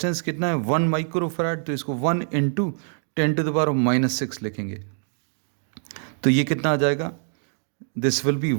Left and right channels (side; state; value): left; silent; digital silence